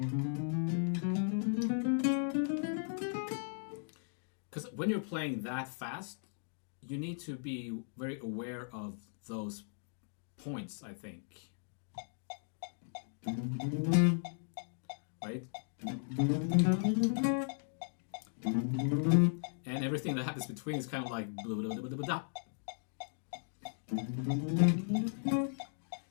Because when you're playing that fast, you need to be very aware of those points, I think. Right? And everything that happens between is kind of like blah, blah, blah, blah, blah.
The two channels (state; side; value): silent; right; digital silence